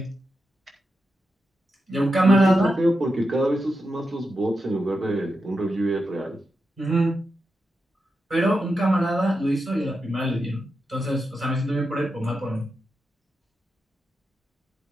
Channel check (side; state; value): both; normal; correlation 0.88